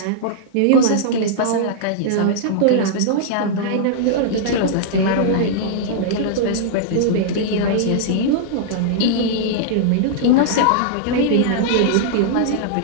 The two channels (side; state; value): both; different; correlation -0.02